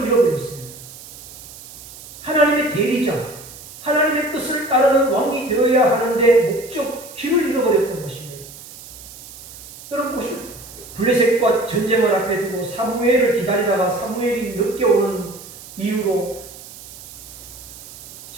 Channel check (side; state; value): right; noise; hiss, 16 dB below the sound